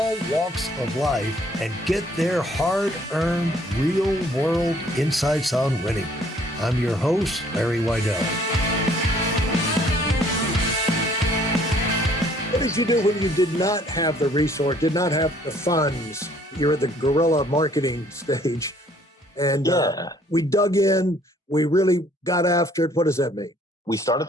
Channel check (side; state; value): both; normal; correlation 0.60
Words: walks of life and get their hard-earned, real-world insights on winning. I'm your host, Larry Weidel. What did you do when you did not have the resource, did not have the funds? You're at the guerrilla marketing stage. And we dug in. We really got after it. What does that mean? We started